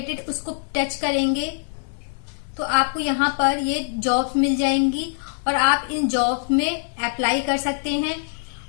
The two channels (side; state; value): right; silent; digital silence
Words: उसको टच करेंगे तो आपको यहाँ पर ये जॉब्स मिल जाएंगी और आप इन जॉब्स में अप्लाई कर सकते हैं।